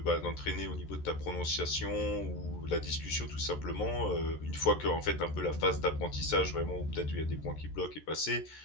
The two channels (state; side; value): late; right; 13 ms